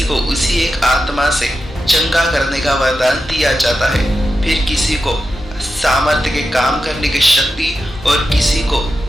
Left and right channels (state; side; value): normal; both; correlation 0.90